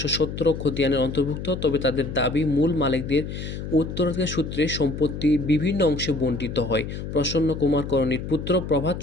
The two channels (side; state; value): left; noise; hum, 7 dB below the sound